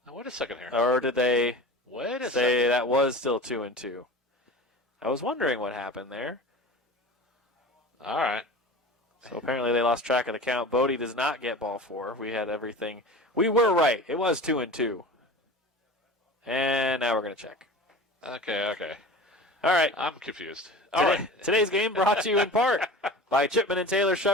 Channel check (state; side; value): normal; both; correlation 0.36